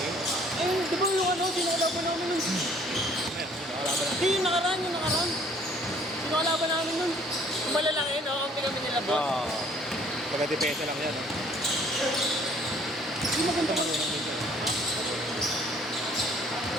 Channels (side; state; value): both; normal; correlation 0.58